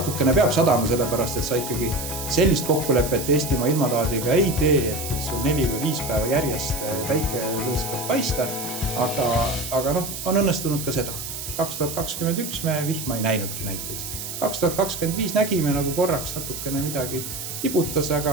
peab sadama sellepärast, et sa ikkagi sellist kokkulepet Eestimaa ilmataadiga ei tee, et sul 4 või 5 päeva järjest väike lõõskab paista, aga on õnnestunud ka seda. 2021 me vihma ei näinudki näiteks. 2025 nägime nagu korraks natukene midagi tibutas,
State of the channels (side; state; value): right; noise; hiss, 7 dB below the sound